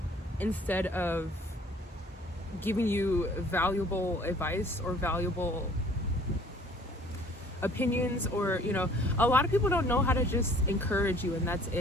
instead of giving you valuable advice or valuable opinions, or, you know, a lot of people don't know how to just encourage you, and that's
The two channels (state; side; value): normal; both; correlation 0.54